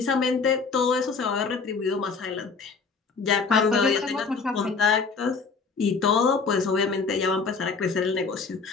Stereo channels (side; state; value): right; quieter; 4.9 dB